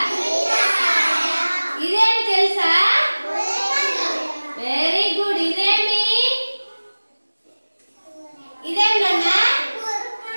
ఇదేం తెలుసా? Very good. ఇదేమి? ఇదేం నాన్నా?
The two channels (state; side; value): inverted; both; correlation -1.00